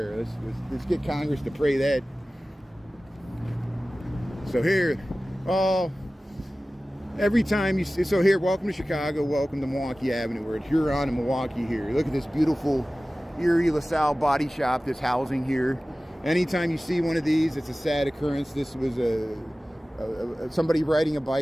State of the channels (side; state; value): both; normal; correlation 0.97